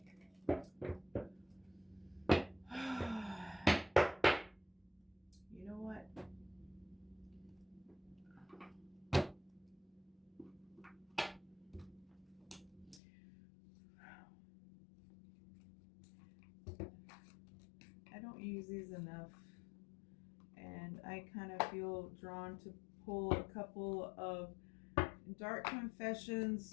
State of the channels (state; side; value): drops out; right; at 13.0 s